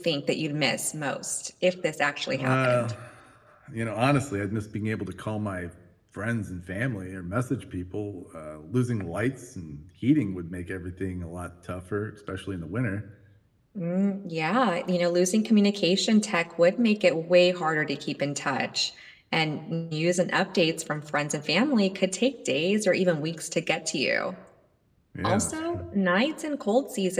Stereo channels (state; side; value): identical; both; correlation 1.00